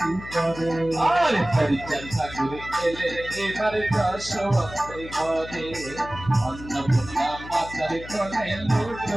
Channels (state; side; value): noise; left; hum, 14 dB below the sound